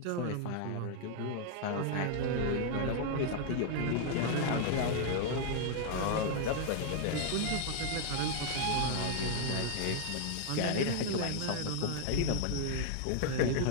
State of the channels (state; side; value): different; both; correlation 0.00